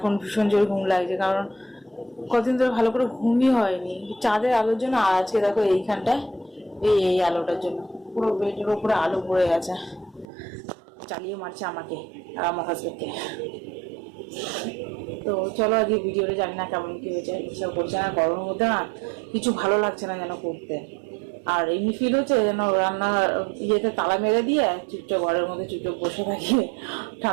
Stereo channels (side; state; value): left; drops out; at 10.2 s